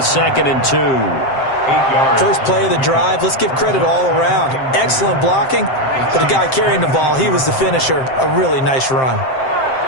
and 2. First play of the drive, let's give credit all around. Excellent blocking, but the guy carrying the ball, he was the finisher. A really nice run.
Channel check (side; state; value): right; late; 7.6 ms